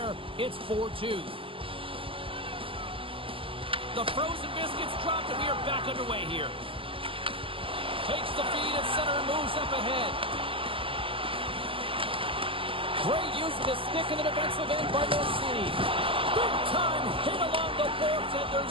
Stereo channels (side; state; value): left; late; 0.26 ms